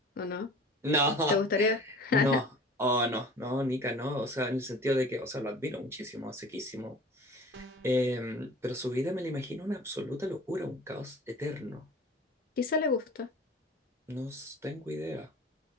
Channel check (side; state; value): both; normal; correlation 0.43